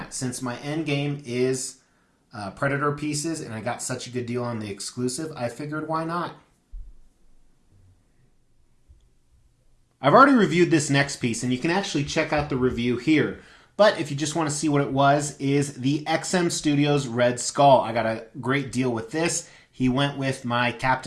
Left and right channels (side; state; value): both; identical; correlation 1.00